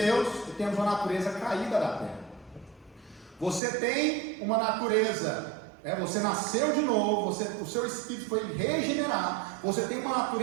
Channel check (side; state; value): left; drops out; at 3.6 s